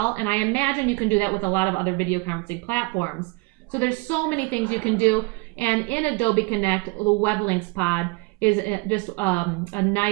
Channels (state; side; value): quieter; left; 28.0 dB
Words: and I imagine you can do that with a lot of other video conferencing platforms. So there's so many things you can do, and in Adobe Connect, the web links pod is just a